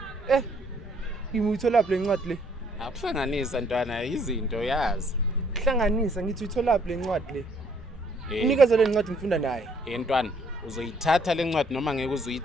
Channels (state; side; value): normal; both; correlation 0.65